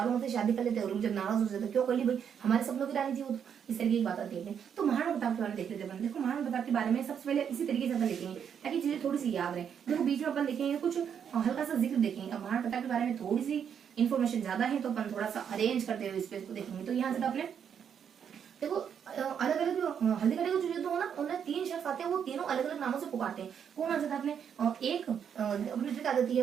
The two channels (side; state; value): left; quieter; 8.0 dB